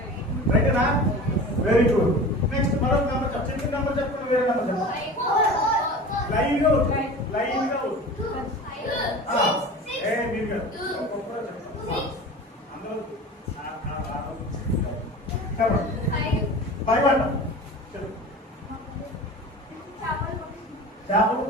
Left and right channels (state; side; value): normal; both; correlation 0.36